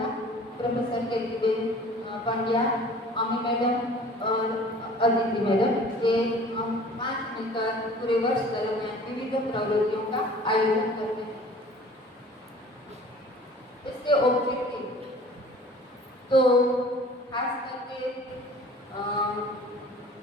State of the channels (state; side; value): normal; both; correlation 0.47